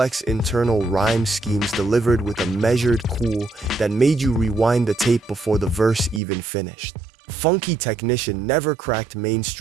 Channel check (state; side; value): drops out; left; at 6.2 s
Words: internal rhyme schemes delivered with a measured cool that made you rewind the tape before the verse even finished. Funky Technician never cracked